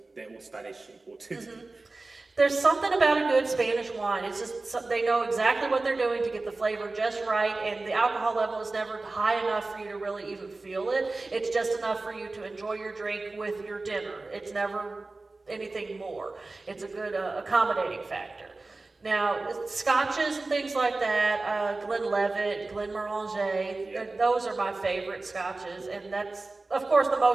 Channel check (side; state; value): left; quieter; 3.3 dB